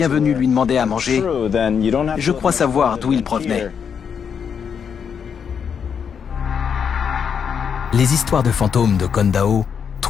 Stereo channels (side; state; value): right; quieter; 7.1 dB